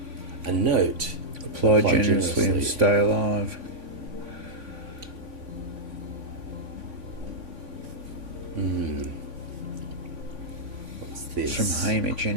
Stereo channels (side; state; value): left; late; 3.5 ms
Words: A note. Apply generously and stay alive. What's this? It's from Hamish